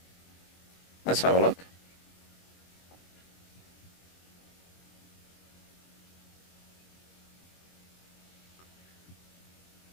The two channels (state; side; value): late; right; 23 ms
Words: Let's have a look.